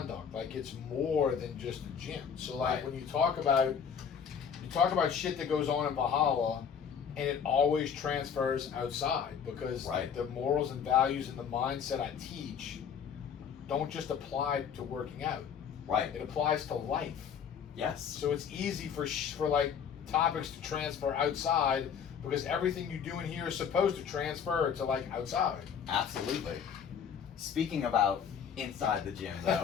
Like it's more than just a gym. So like when you talk about shit that goes on in Valhalla, and it always transfers outside because the morals and values and the mindset I teach don't just apply to working out. Right. It applies to life. Yes. So it's easy for like topics to transfer outside because everything you do in here is supposed to transfer to like outside. Absolutely. Speaking about inside the gym though.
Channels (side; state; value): right; quieter; 7.4 dB